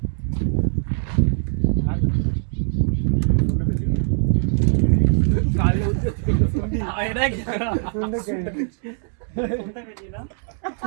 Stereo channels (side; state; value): left; silent; digital silence